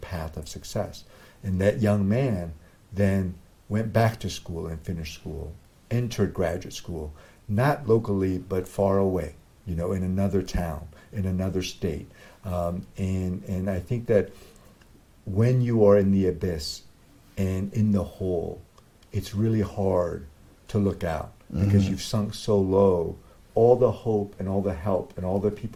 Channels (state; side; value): identical; both; correlation 1.00